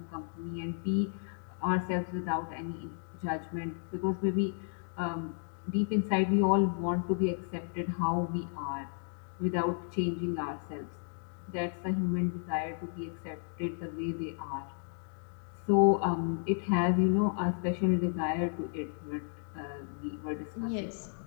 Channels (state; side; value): silent; right; 55 dB below the other